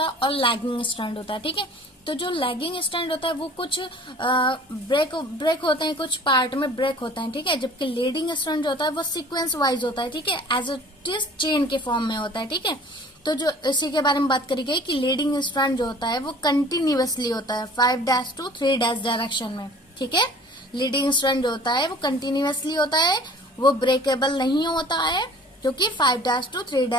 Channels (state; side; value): normal; both; correlation 0.48